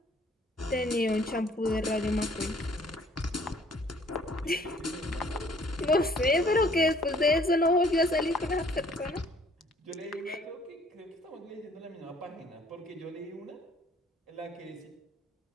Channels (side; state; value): both; normal; correlation 0.59